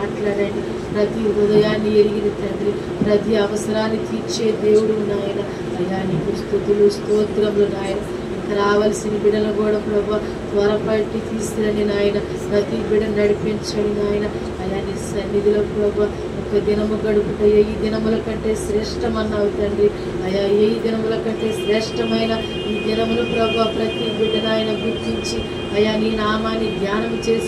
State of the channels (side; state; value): both; identical; correlation 1.00